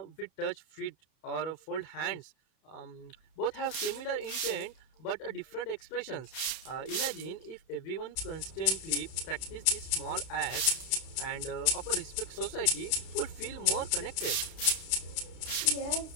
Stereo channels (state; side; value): late; right; 32 ms